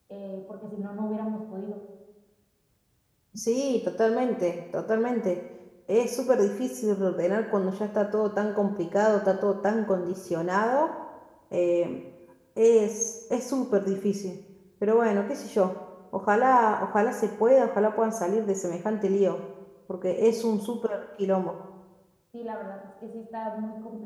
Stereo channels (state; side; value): identical; both; correlation 1.00